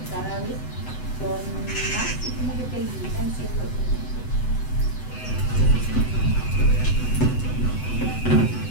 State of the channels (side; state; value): right; late; 8.0 ms